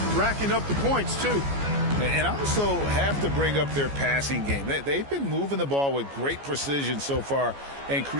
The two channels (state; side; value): late; left; 14 ms